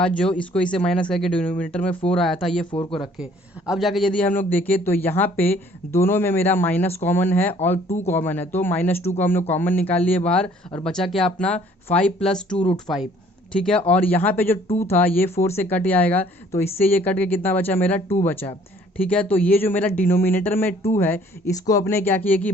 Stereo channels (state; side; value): normal; both; correlation 0.58